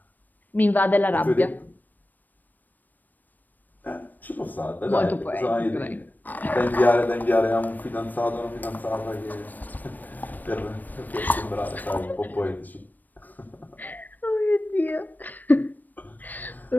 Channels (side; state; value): right; late; 0.087 ms